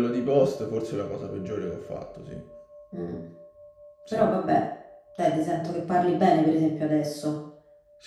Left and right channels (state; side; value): identical; both; correlation 1.00